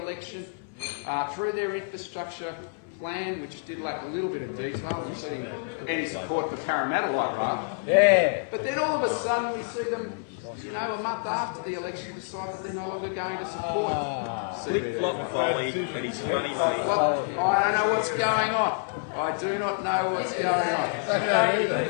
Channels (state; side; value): silent; right; 60 dB below the other